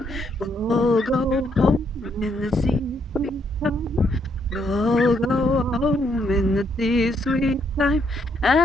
We'll all go home in the sea's sweet time. We'll all go home in the sea's sweet time,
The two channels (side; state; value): both; normal; correlation 0.73